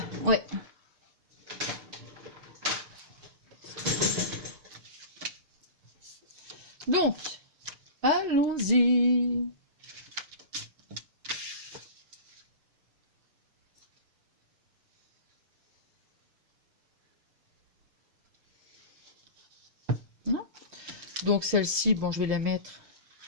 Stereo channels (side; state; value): left; late; 6.8 ms